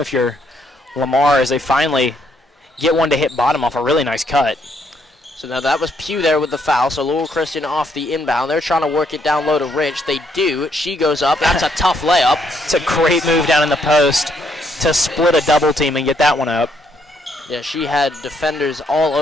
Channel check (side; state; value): both; normal; correlation 0.72